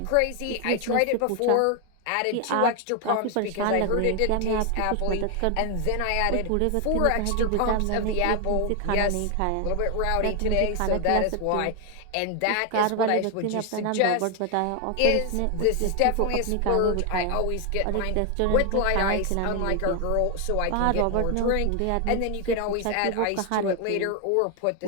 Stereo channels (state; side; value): different; both; correlation 0.01